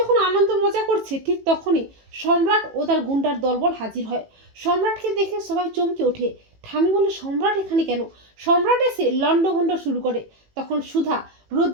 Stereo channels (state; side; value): late; left; 18 ms